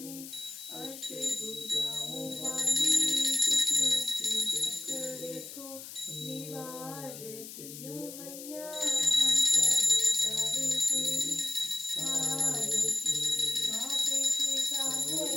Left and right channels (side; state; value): left; noise; hiss, 12 dB below the sound